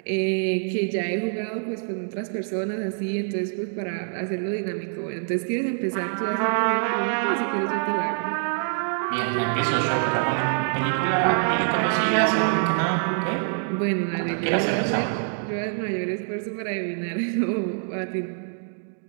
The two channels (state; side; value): silent; left; digital silence